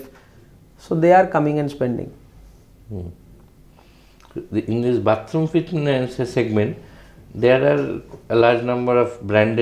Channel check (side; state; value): both; identical; correlation 1.00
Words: So they are coming and spending. In this bathroom fitness segment, there are a large number of